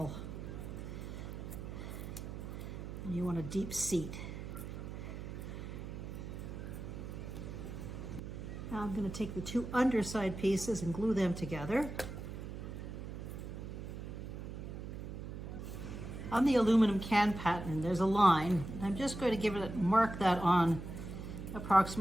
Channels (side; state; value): right; noise; hum, 8 dB below the sound